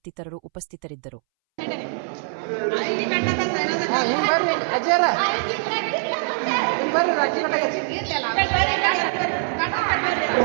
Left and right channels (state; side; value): silent; left; 63 dB below the other